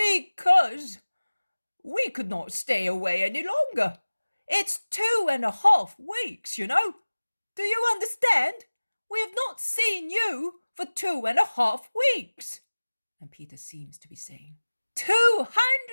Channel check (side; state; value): both; inverted; correlation -1.00